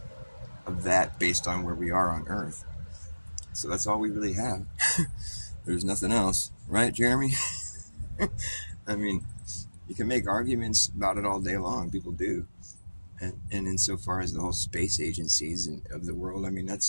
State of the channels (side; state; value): both; inverted; correlation -1.00